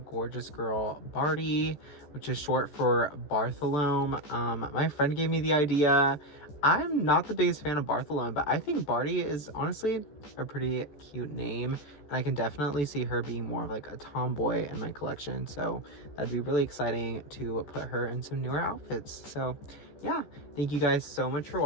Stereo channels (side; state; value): right; late; 14 ms